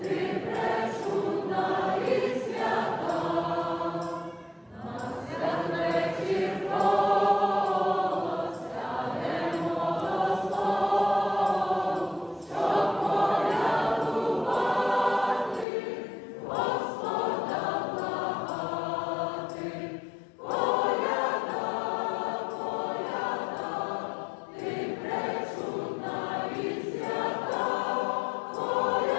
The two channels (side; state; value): right; drops out; at 15.7 s